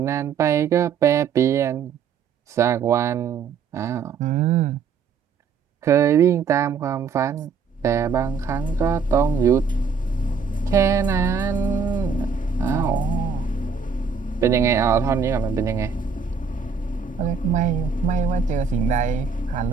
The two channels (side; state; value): left; quieter; 5.8 dB